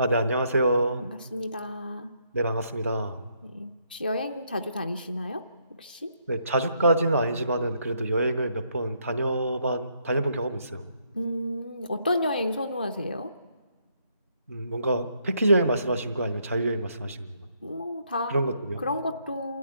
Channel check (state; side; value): inverted; both; correlation -0.73